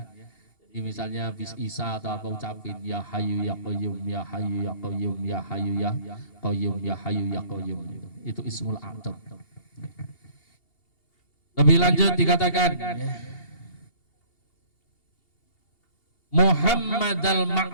Jadi misalnya habis Isa atau apa ucapin ya Hayyu ya Qayyum ya Hayyu ya Qayyum ya Hayyu ya Qayyum ya Hayyu ya Qayyum itu Ismul A'dzam. Lebih lanjut dikatakan Muhammad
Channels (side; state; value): right; late; 2.8 ms